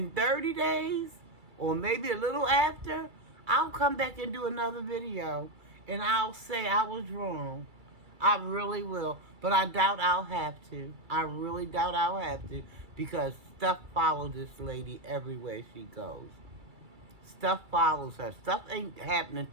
30 days, or maybe a little after, I'll come back and do another video. And I'll say I was wrong. I really will. But I doubt I'll have to. I really doubt I'll have to. Because stuff follows this lady everywhere she goes. Stuff follows her. Stuff ain't happening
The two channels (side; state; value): left; late; 2.3 ms